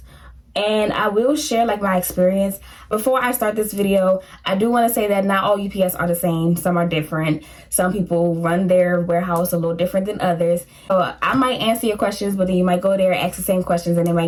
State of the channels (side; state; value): both; identical; correlation 1.00